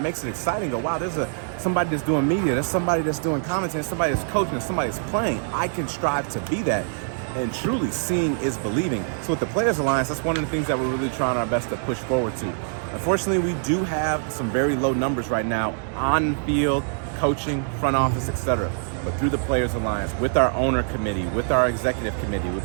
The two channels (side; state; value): left; silent; digital silence